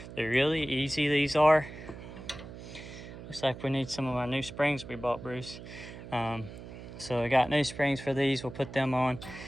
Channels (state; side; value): noise; right; hum, 13 dB below the sound